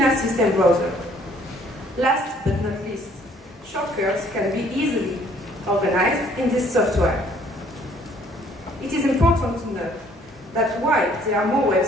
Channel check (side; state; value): both; normal; correlation 0.61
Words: system browser. Last but not least, shortcuts can be easily organized in this software. It is important to note that while there are more